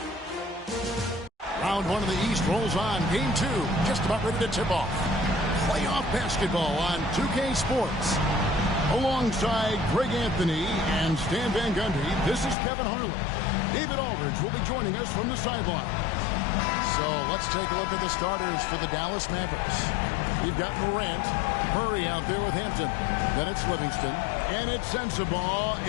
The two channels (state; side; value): drops out; right; at 12.6 s